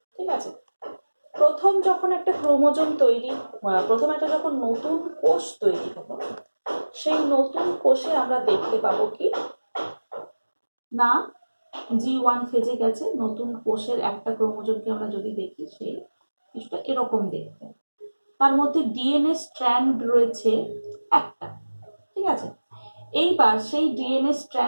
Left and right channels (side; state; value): both; inverted; correlation -1.00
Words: ঠিক আছে, প্রথম যখন একটা ক্রোমোজোম তৈরি, প্রথম একটা যখন নতুন কোষ তৈরি হলো, সেই নতুন কোষে আমরা দেখতে পাবো কি না, G1 ফেজে গেছে। নতুন কোষের একটা ক্রোমোজোমকে আমরা যদি দেখি, সেই কিছুটা এরকম দেখতে, তার মধ্যে ডিএনএ স্ট্র্যান্ড রয়েছে একটা। ঠিক আছে, এইবার সেই ডিএনএ